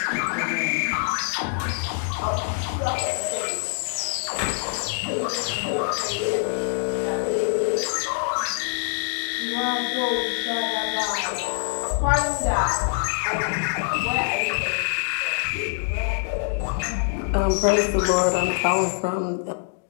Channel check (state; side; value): silent; right; digital silence